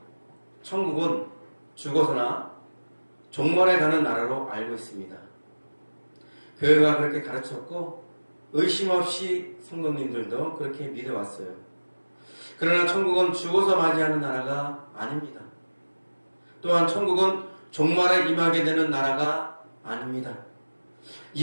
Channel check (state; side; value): inverted; both; correlation -1.00